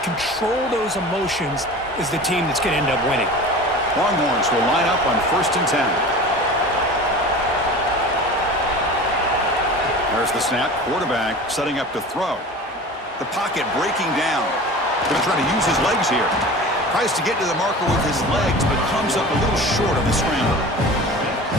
control those emotions is the team that's going to end up winning. Longhorns will line up on 1st and 10. There's the snap. Quarterback setting up to throw. The pocket breaking down. Going to try to use his legs here. Tries to get to the marker with his legs, but comes up a little short of the scramble.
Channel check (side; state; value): both; normal; correlation 0.36